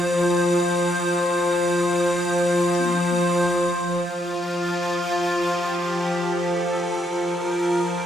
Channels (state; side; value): normal; both; correlation 0.74